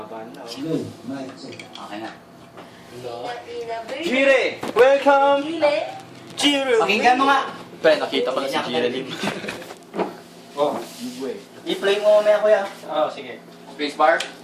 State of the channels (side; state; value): both; identical; correlation 1.00